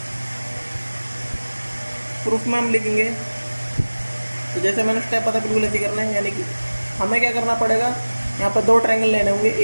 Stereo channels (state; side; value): inverted; both; correlation -1.00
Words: प्रूफ में हम लिखेंगे, तो जैसे मैंने स्टेप पता बिल्कुल ऐसे करना है। यानी कि हमें क्या करना पड़ेगा, यहाँ पर दो ट्रायंगल लेने होंगे